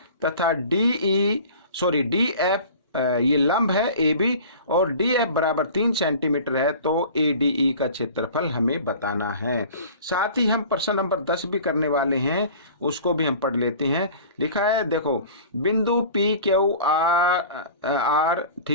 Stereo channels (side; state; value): both; inverted; correlation -0.42